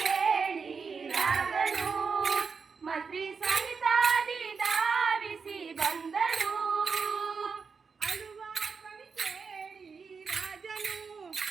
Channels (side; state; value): left; quieter; 5.4 dB